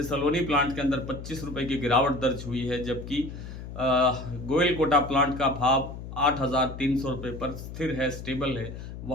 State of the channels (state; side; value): noise; left; hum, 10 dB below the sound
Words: सलोनी प्लांट के अंदर 25 रुपये की गिरावट दर्ज हुई है, जबकि गोयल कोटा प्लांट का भाव 8,300 रुपये पर स्थिर है, स्टेबल है,